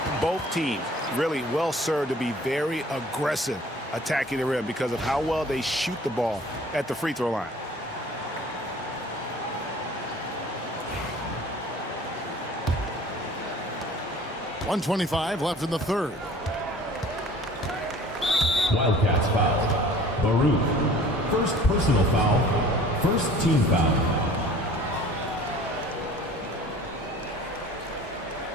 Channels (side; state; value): both; normal; correlation 0.48